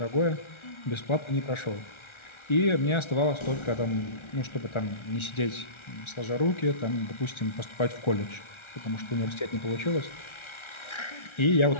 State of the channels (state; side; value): late; right; 1.4 ms